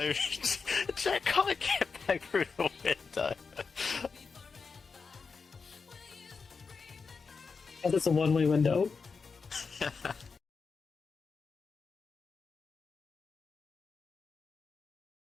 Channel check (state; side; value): quieter; right; 5.0 dB